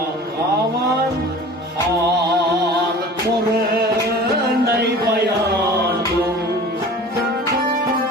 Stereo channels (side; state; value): both; normal; correlation 0.41